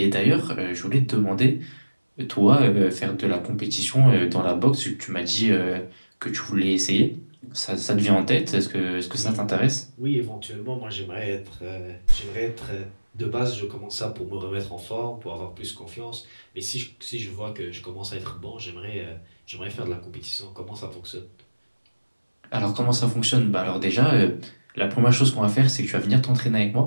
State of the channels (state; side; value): inverted; both; correlation -1.00